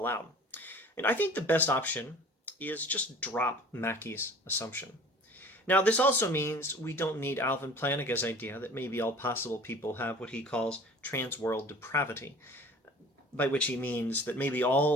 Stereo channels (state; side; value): normal; both; correlation 0.45